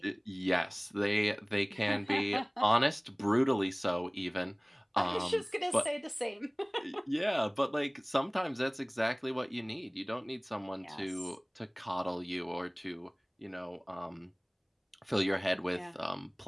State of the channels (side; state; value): both; identical; correlation 1.00